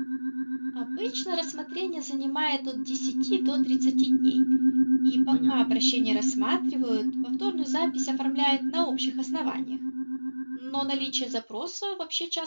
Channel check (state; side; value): inverted; both; correlation -1.00